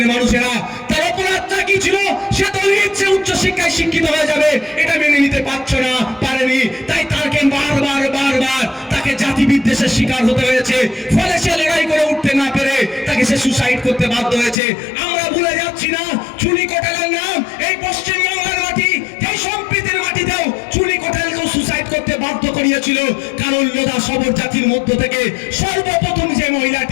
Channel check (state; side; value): drops out; right; at 14.6 s